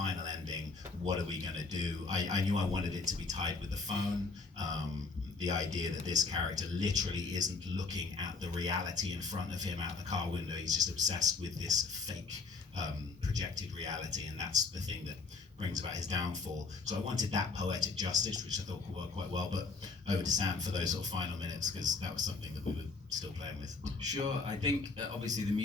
ending, what are we going to do? I knew I wanted it to be tied with the phone. The idea that this character literally isn't looking at the reality in front of him out the car window. He's just obsessed with this fake projected reality, and that's the thing that brings about his downfall. So I wanted that poetic justice, which I thought could work quite well. But over to Sam for those sort of final minutes, because that was something that we were still playing with. Sure, I think obviously the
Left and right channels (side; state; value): right; quieter; 4.4 dB